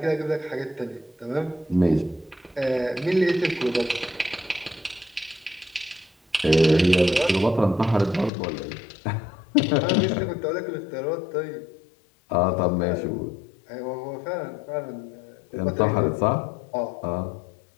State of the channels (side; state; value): right; drops out; at 8.3 s